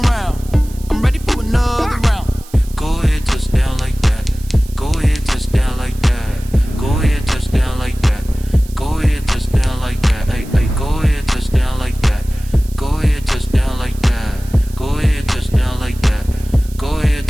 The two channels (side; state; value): right; noise; hiss, 21 dB below the sound